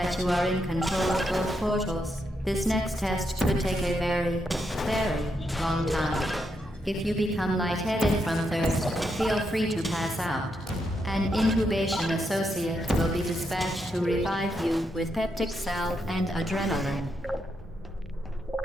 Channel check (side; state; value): both; normal; correlation 0.81